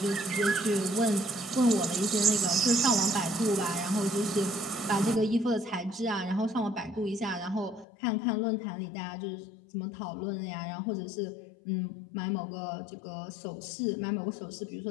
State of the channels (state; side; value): drops out; right; at 7.9 s